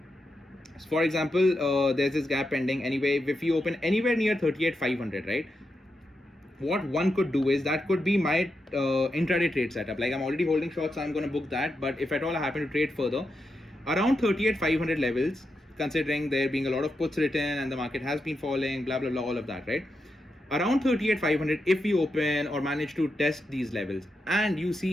So for example, there's this gap pending anyway. If you open anywhere near 38,500, right, what one could do is, that could be my intraday trade setup. Like, I'm already holding shorts, so I'm going to book that. But if at all I happen to trade further around 38,500 levels, considering there being a lot of puts written and the market has been falling, blah blah blah, all of that, right? Around 38,500, if we open or manage to test these levels and you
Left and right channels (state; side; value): normal; both; correlation 0.86